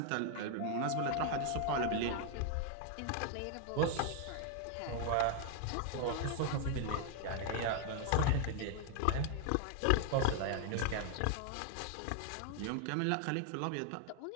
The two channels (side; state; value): both; different; correlation 0.00